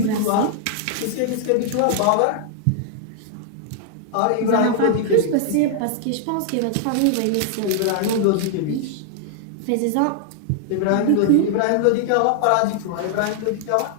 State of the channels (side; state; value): both; different; correlation -0.01